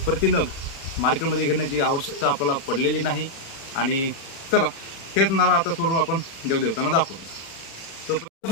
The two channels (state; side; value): late; right; 36 ms